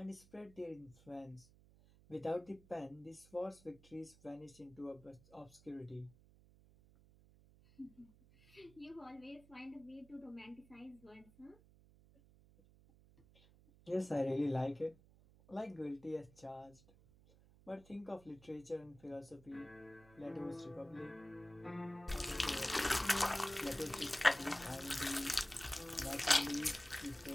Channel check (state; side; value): noise; right; hum, 24 dB below the sound